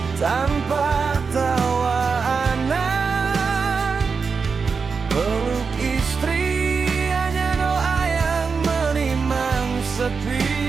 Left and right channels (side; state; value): left; quieter; 5.2 dB